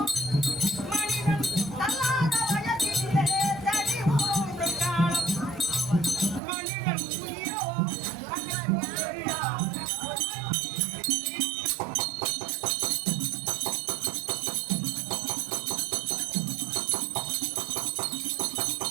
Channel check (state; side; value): drops out; left; at 6.4 s